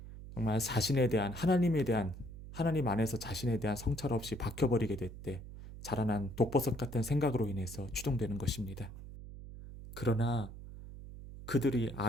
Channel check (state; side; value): noise; right; hum, 13 dB below the sound